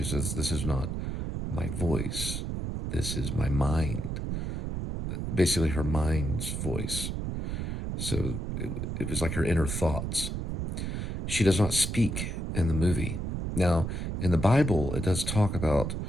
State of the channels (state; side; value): noise; right; rumble, 3 dB below the sound